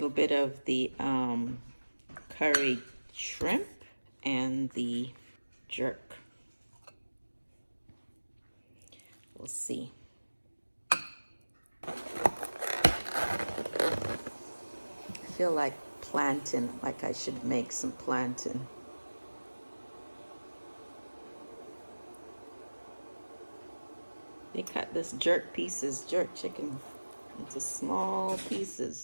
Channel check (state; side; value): inverted; both; correlation -1.00